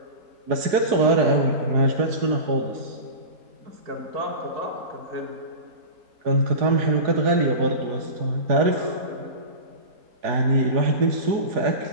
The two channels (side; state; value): left; late; 4.7 ms